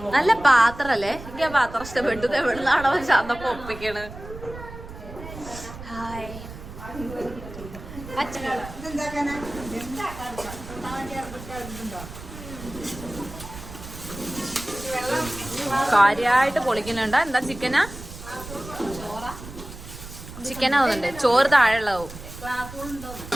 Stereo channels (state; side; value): noise; right; rumble, 13 dB below the sound